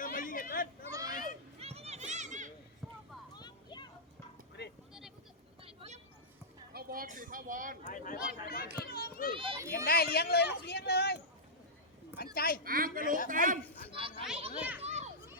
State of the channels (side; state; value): both; normal; correlation -0.12